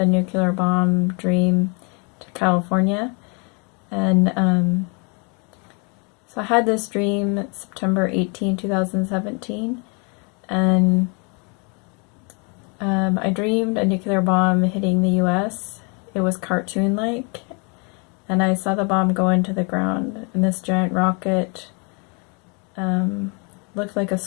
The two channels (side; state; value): right; quieter; 33.7 dB